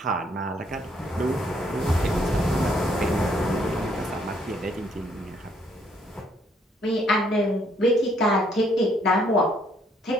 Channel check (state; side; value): normal; both; correlation 0.68